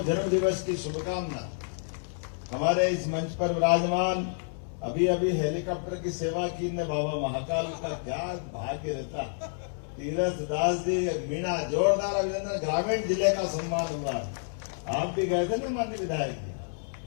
जन्म दिवस की शुभकामना। हमारे इस मंच पर विराजमान अभी अभी हेलीकॉप्टर की सेवा की ने बाबा महाकाल का क्या भाग्य रहता। तीरथ दास जी, मीणा, जोरदार अभिनंदन। ग्रामीण जिले का सम्मान हुआ। आप भी गए थे ना माननीय विधायक जी।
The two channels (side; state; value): right; silent; digital silence